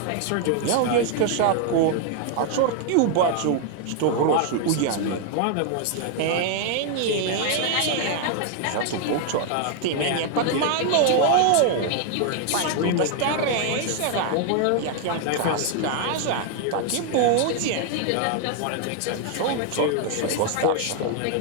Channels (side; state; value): both; different; correlation 0.00